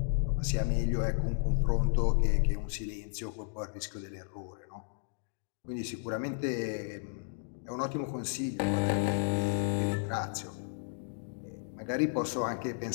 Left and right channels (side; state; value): right; silent; digital silence